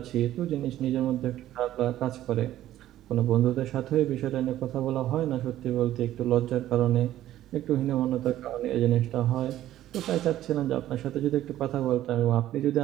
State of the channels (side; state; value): left; quieter; 13.3 dB